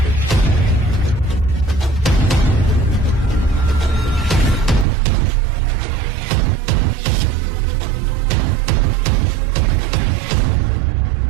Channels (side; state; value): left; drops out; at 4.9 s